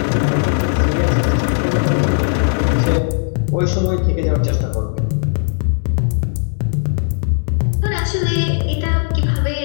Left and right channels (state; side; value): silent; right; 62 dB below the other